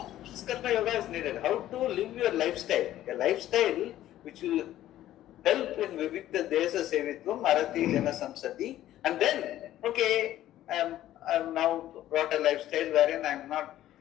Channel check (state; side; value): quieter; right; 13.4 dB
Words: this karma yoga is needed. How to live your lifestyle? A lifestyle which will help in Vivikta Desa Sevitvam, Arati Jana Samsati. And then, okay, I'm now brought a lifestyle wherein I'm not